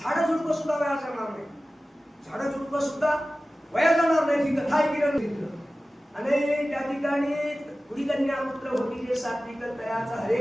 झाडं झुडपं सुद्धा वाया जाणार नाही. झाडं झुडपं सुद्धा वाया जाणार नाही ही कथा ऐकण्याने घेतलं. आणि त्या ठिकाणी पुढी कन्या पुत्र होती जे सात्विक तयाचा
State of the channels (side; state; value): both; normal; correlation 0.96